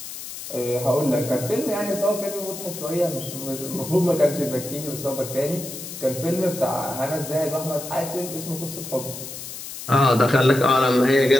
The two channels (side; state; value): left; noise; hiss, 10 dB below the sound